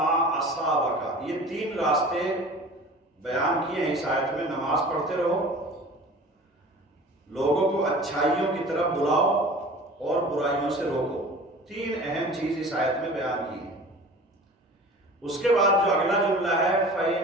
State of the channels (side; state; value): both; normal; correlation 0.41